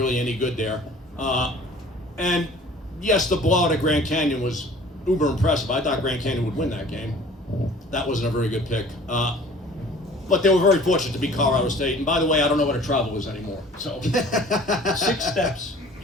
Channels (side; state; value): both; normal; correlation 0.48